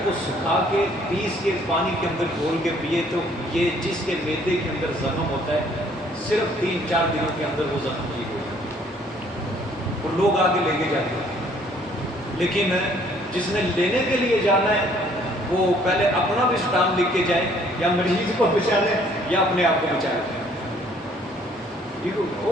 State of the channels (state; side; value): normal; both; correlation 0.61